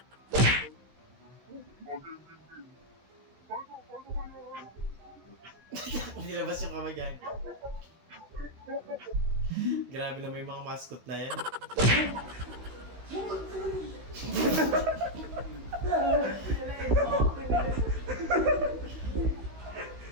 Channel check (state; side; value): late; left; 16 ms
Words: Nilabas yung kamay yan. Grabe na may mga mascot na yan.